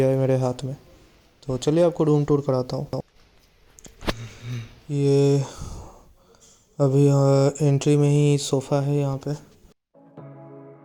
है मेरे हाथ में। तो चलिए आपको रूम टूर कराता हूँ। ये अभी एंट्री में ही सोफ़ा है यहाँ पे।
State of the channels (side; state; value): both; identical; correlation 1.00